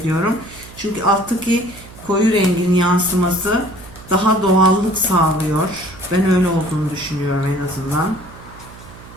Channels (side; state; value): right; noise; hum, 19 dB below the sound